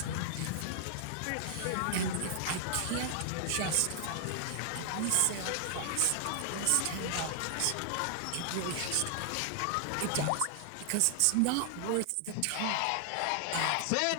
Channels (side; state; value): both; different; correlation 0.00